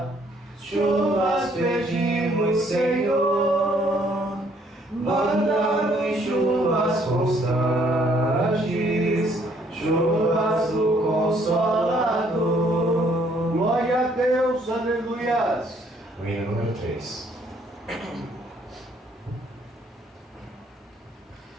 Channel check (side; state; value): both; normal; correlation 0.65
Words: chuvas pedimos, Senhor. Manda-nos chuvas constantes, chuvas Glória a Deus, aleluias. O hino número 3.